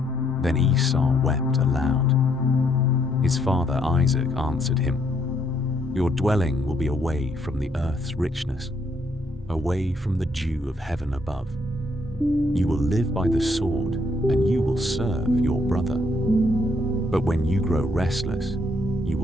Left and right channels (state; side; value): normal; both; correlation 0.71